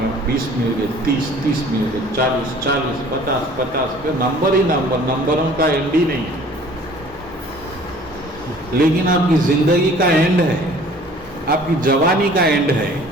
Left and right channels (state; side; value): normal; both; correlation 0.51